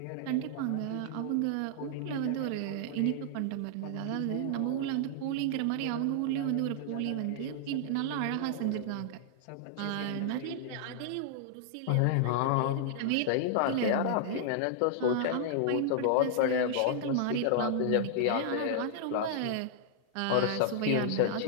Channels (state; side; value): different; both; correlation -0.01